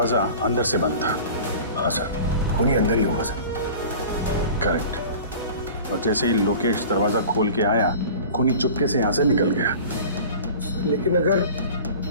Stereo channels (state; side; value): inverted; both; correlation -0.40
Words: अंदर से बंद था। हाँ सर, खूनी अंदर ही होगा सर। करेक्ट। और जैसे ही लोकेश दरवाजा खोल के आया, खूनी चुपके से यहाँ से निकल गया। लेकिन अगर